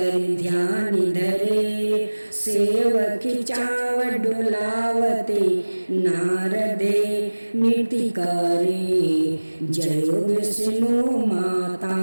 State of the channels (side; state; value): both; inverted; correlation -1.00